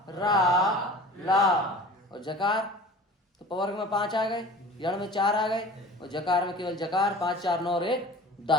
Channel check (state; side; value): normal; both; correlation 0.41